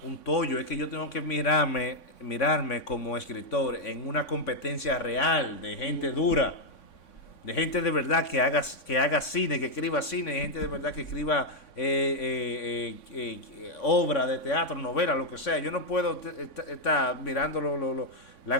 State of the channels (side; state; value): right; late; 3.6 ms